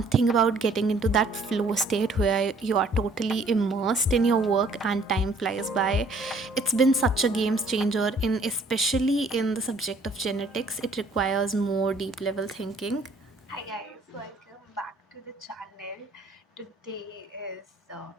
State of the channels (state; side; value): quieter; left; 3.1 dB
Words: about getting into that flow state where you are totally immersed in your work and time flies by. It's been such a game changer in especially in the subject of genetics. It requires more deep level thinking. Hi guys, welcome back to the channel. Today is